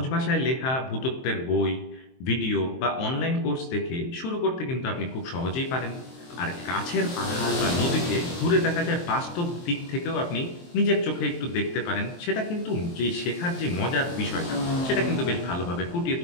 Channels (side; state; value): right; late; 23 ms